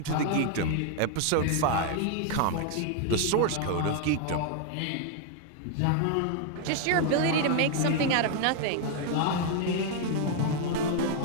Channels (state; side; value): different; both; correlation 0.00